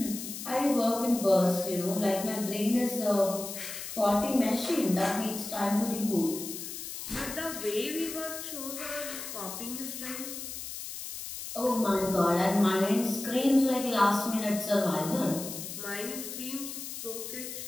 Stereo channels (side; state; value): left; noise; hiss, 8 dB below the sound